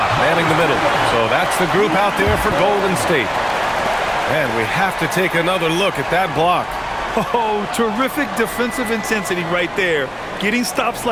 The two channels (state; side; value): identical; both; correlation 1.00